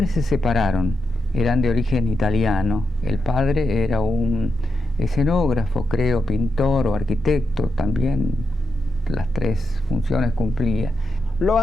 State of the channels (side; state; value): both; normal; correlation 0.86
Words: se separaron, eran de origen italiano. El padre era un escenógrafo, creo, pintor o arquitecto, también las tres funciones cumplía. Lo